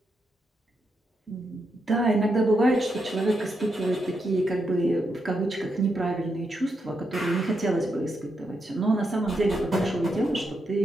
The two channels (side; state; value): both; normal; correlation 0.82